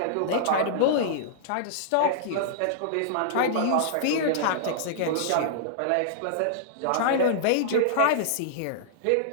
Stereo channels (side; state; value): both; different; correlation -0.02